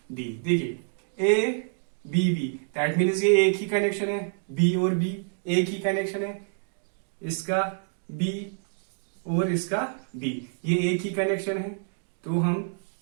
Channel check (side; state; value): left; silent; digital silence